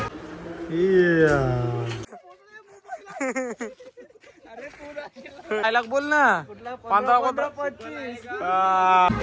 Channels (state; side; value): identical; both; correlation 1.00